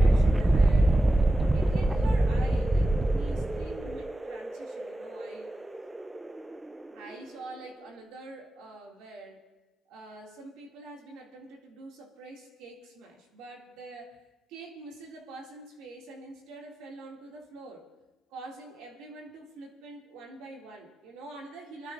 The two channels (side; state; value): both; normal; correlation 0.94